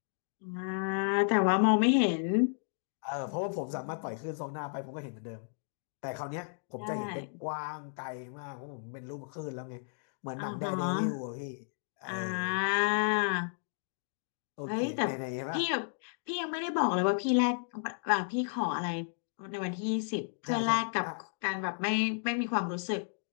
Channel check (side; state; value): right; silent; digital silence